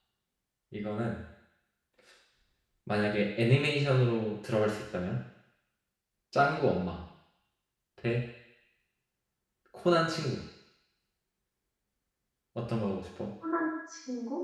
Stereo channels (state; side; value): identical; both; correlation 1.00